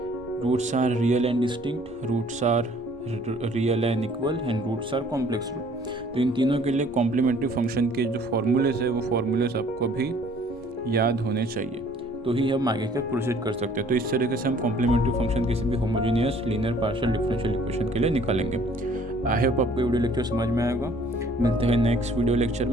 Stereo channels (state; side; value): normal; both; correlation 0.56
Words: roots are real and distinct, roots are real and equal and roots are complex root. तो इन तीनों के लिए कॉम्प्लीमेंट्री फंक्शन के जो फॉर्मूलेज है वो फॉर्मूलेज आपको भी याद होने चाहिए, तो ही हम आगे का प्रोसीड कर सकते हैं। तो इस तरीके से हम कॉम्प्लीमेंट्री फंक्शन किसी भी homogeneous linear partial differential equation के लिए निकालेंगे। आई होप आपको वीडियो लेक्चर समझ में आएगा। मिलते हैं नेक्स्ट वीडियो लेक्चर